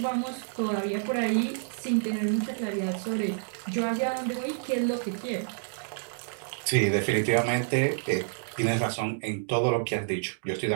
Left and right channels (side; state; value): left; silent; digital silence